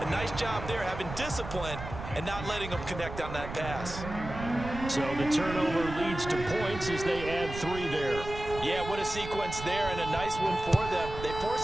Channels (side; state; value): right; noise; rumble, 9 dB below the sound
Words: A nice job there having discipline and not letting them connect on that pass. So the turnover leads to points as they add 3 there. Yeah, what a sequence there, and a nice one for them. They